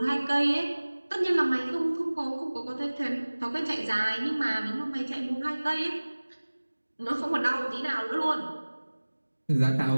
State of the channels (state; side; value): inverted; both; correlation -1.00